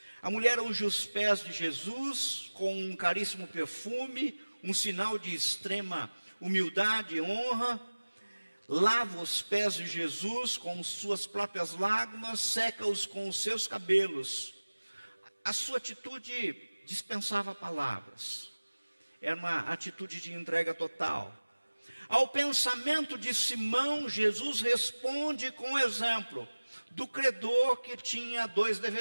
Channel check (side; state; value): both; inverted; correlation -1.00